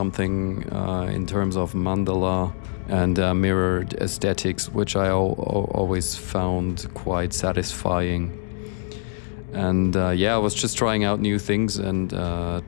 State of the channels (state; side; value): silent; right; 63 dB below the other